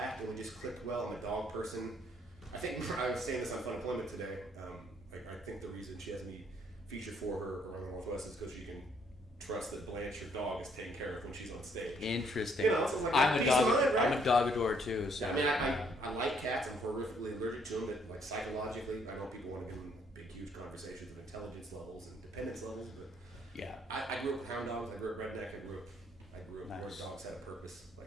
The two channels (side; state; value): both; normal; correlation 0.67